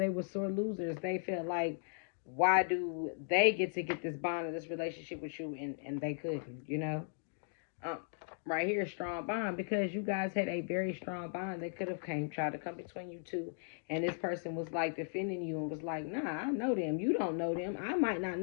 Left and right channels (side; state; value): right; silent; digital silence